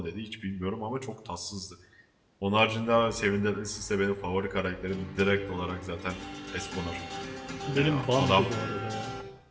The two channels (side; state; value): both; identical; correlation 1.00